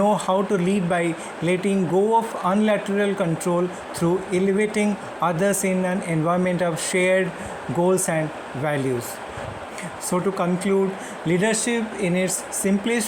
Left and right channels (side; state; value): both; identical; correlation 1.00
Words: how to lead by letting go of unilateral control through elevating others in an environment of shared goals and values. So, to conclude, leadership in its